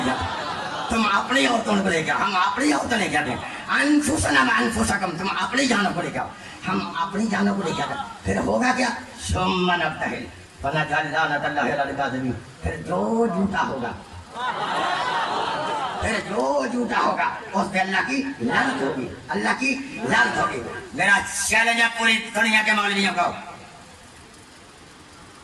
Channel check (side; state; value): both; identical; correlation 1.00